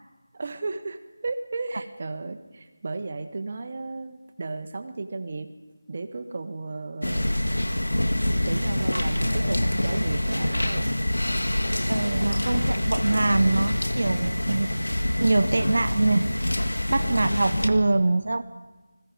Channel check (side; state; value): both; inverted; correlation -0.98